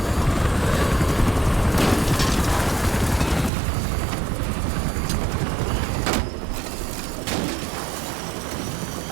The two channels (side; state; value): left; drops out; at 3.5 s